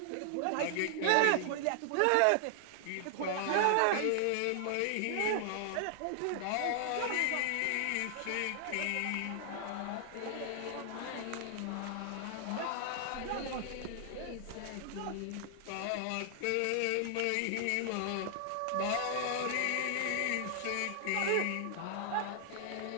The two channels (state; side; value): different; both; correlation 0.00